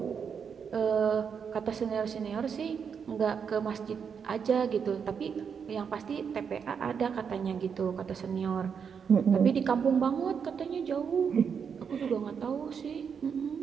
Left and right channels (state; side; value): quieter; left; 6.7 dB